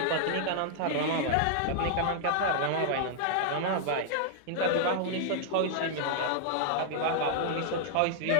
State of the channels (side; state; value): both; different; correlation -0.01